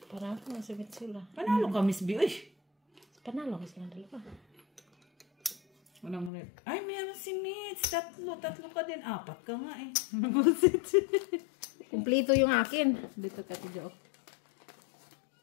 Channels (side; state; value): right; drops out; at 6.3 s